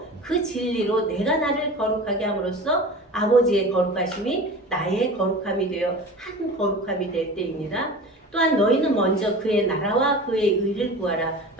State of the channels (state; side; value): normal; both; correlation 0.35